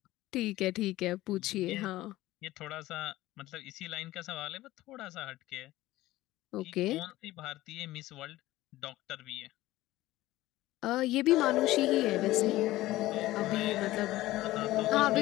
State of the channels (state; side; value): quieter; right; 16.7 dB